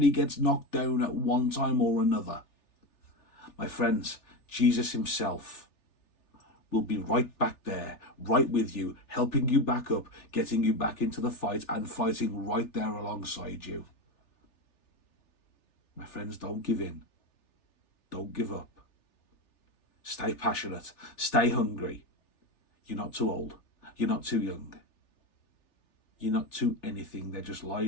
gets knocked down at one time or another, my friends, Jesus himself will be right back there, right with you, helping you back up, getting you back into the fight, and fighting right there alongside you. My friends, don't give in. Don't give up. Stay passionate. Stay hungry. You're not too old. You're not too young. You're not too anything. They're just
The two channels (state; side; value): late; right; 3.4 ms